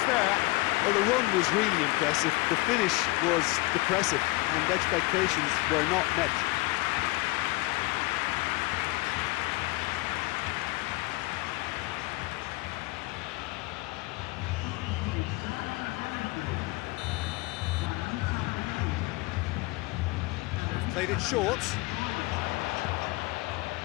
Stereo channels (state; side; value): quieter; right; 22.1 dB